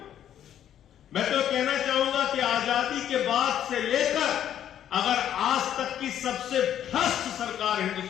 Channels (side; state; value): right; quieter; 10.4 dB